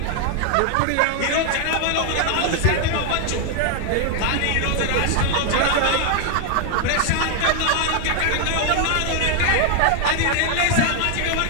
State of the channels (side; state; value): both; different; correlation 0.00